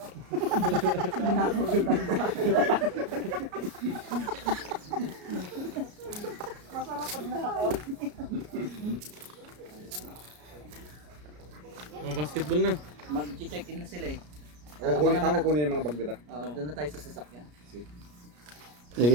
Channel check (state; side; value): late; left; 33 ms